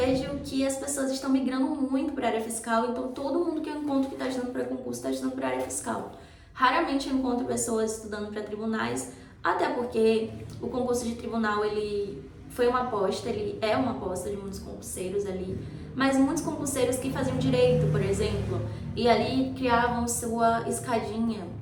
que as pessoas estão migrando muito para a área fiscal, então todo mundo que eu encontro que está estudando para concurso está estudando para a área fiscal. Raramente eu encontro pessoas estudando para tribunais, até porque o concurso de tribunal ele foi uma aposta, ele é uma aposta de muitos concurseiros ali, mas muitos concurseiros que faziam direito, por exemplo, e ali criavam sua escadinha.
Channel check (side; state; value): both; identical; correlation 1.00